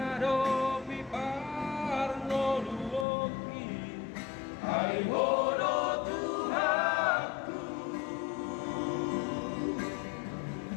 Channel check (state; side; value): drops out; right; at 3.1 s